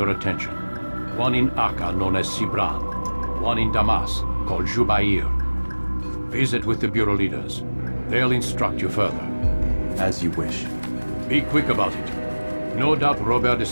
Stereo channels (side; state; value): both; inverted; correlation -1.00